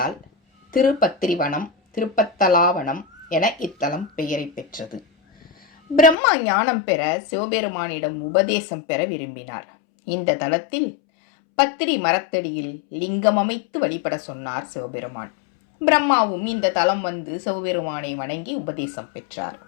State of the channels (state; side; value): drops out; right; at 6.2 s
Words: திருப்பத்திரிவனம், திருப்பத்தலாவனம் என இத்தலம் பெயரை பெற்றது. பிரம்மா ஞானம் பெற சிவபெருமானிடம் உபதேசம் பெற விரும்பினார். இந்த தலத்தில் பத்திரி மரத்தடியில் லிங்கம் அமைத்து வழிபட சொன்னார் சிவபெருமான். பிரம்மாவும் இந்த தலம் வந்து சிவபெருமானை வணங்கி உபதேசம் பெற்றார்.